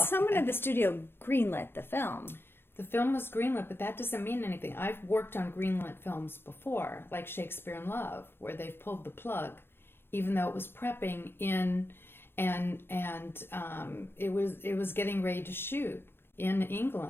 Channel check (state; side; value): late; right; 0.11 ms